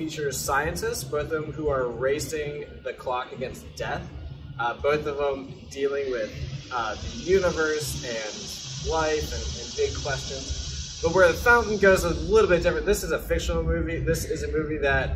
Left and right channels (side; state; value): both; identical; correlation 1.00